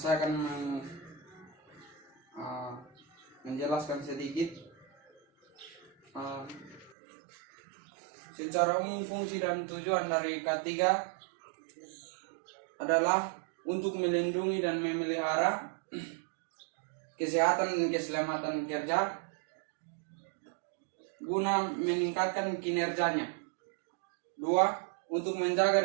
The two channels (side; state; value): left; drops out; at 7.0 s